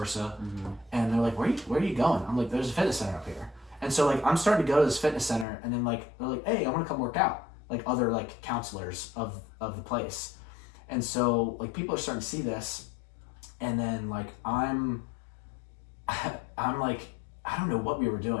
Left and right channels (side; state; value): right; drops out; at 5.5 s